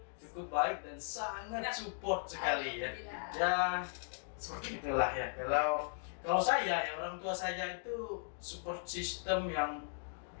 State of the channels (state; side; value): silent; right; digital silence